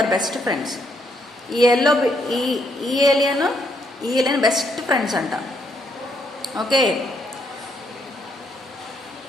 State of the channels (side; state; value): both; normal; correlation 0.74